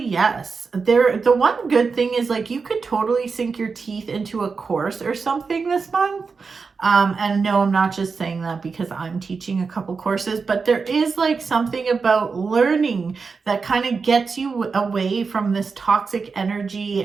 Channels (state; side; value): quieter; left; 4.9 dB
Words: yes, the one good thing is like you could totally sink your teeth into a course or something this month. And no, I'm not just saying that because I'm teaching a couple courses, but there is like something about learning that kind of gets you away from this toxic energy